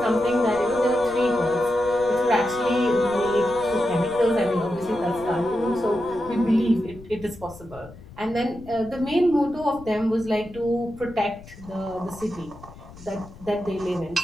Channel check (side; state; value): left; noise; rumble, 19 dB below the sound